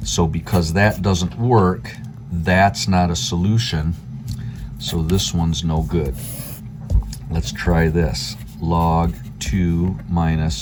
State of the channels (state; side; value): identical; both; correlation 1.00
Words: So because that doesn't work, that's not a solution. So this one's no good. Let's try this. Log 2